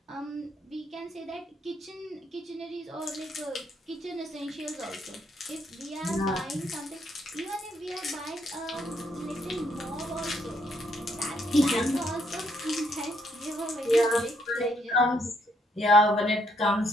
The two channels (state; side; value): normal; both; correlation 0.72